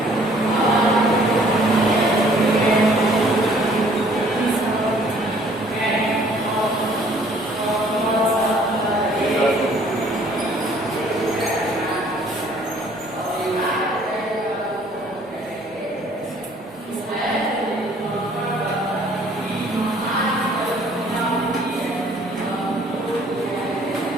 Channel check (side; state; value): both; normal; correlation 0.58